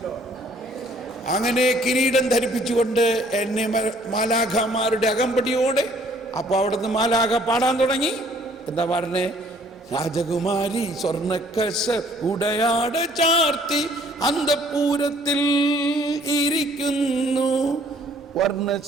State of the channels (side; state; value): both; normal; correlation 0.60